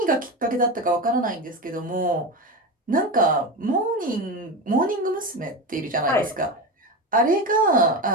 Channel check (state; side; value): normal; both; correlation 0.21